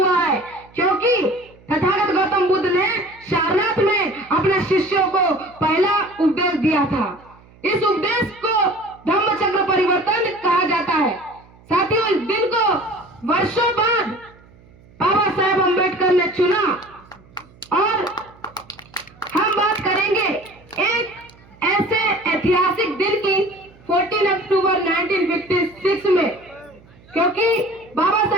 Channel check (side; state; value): right; noise; hum, 26 dB below the sound